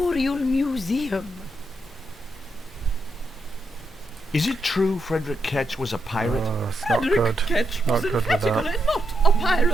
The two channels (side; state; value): both; normal; correlation 0.82